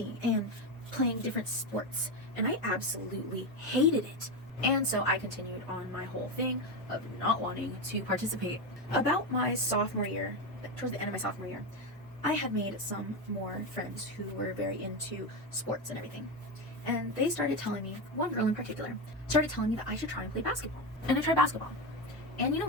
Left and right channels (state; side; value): normal; both; correlation 0.14